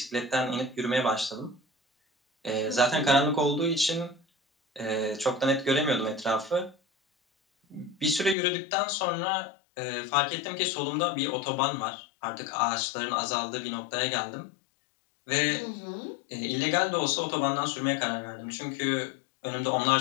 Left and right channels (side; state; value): right; drops out; at 8.3 s